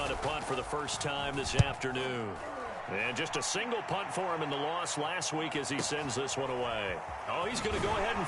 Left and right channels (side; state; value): both; identical; correlation 1.00